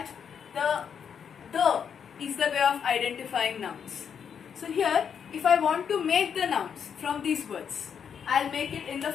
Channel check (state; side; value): quieter; right; 7.4 dB